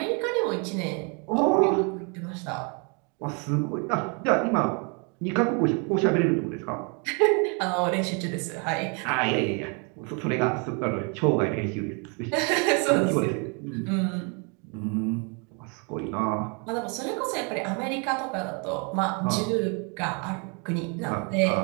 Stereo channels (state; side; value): quieter; left; 35.2 dB